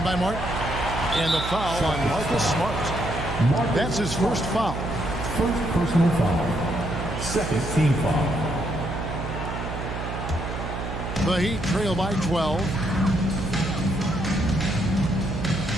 by Martin. And the foul on Marcus Smart. That's his first foul. First personal foul. Second team foul. The Heat trail by 12.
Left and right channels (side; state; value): right; noise; hum, 6 dB below the sound